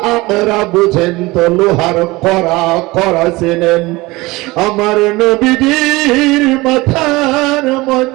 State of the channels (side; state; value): left; quieter; 21.5 dB